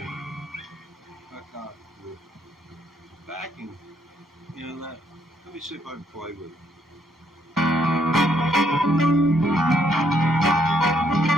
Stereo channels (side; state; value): both; normal; correlation 0.71